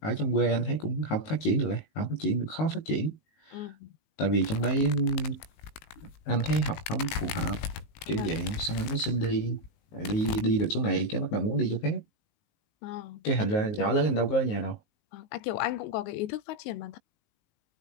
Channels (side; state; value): right; late; 19 ms